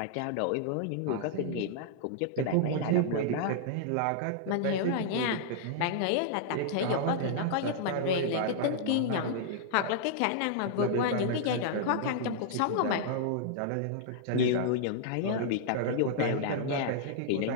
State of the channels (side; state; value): both; different; correlation -0.01